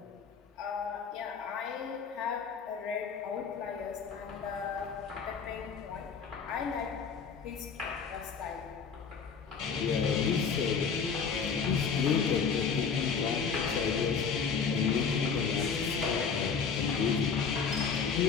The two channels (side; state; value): right; quieter; 6.0 dB